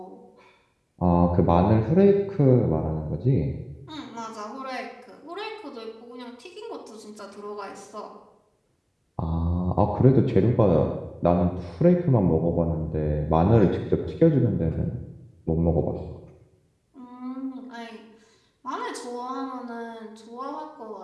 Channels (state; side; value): identical; both; correlation 1.00